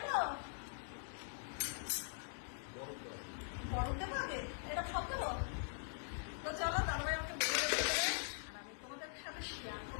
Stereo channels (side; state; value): right; silent; digital silence